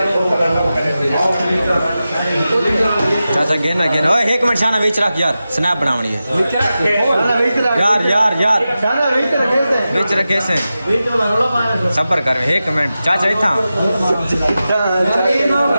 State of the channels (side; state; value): both; inverted; correlation -0.93